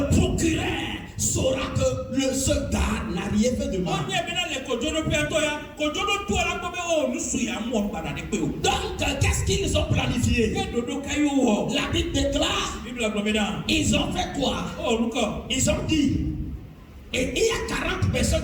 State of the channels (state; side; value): identical; both; correlation 1.00